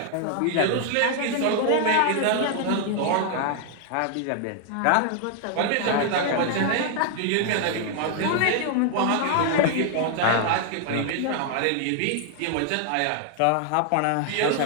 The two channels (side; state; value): both; different; correlation 0.00